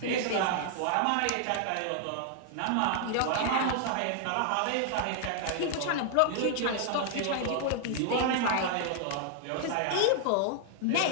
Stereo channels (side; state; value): both; different; correlation 0.00